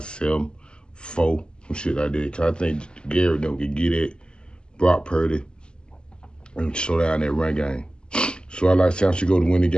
4, some shit like that. Cause I think Gary can get it, Brock Purdy, and slow down that run game. So I like San Francisco to win the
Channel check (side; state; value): right; late; 0.049 ms